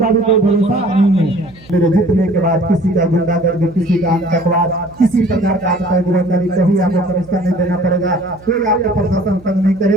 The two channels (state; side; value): noise; right; hum, 24 dB below the sound